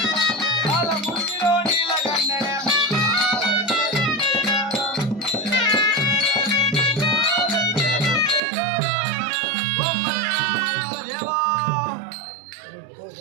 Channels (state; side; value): drops out; left; at 8.4 s